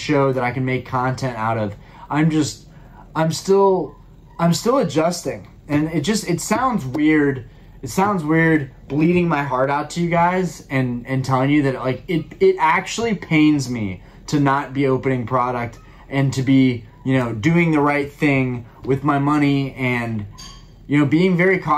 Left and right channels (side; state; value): both; identical; correlation 1.00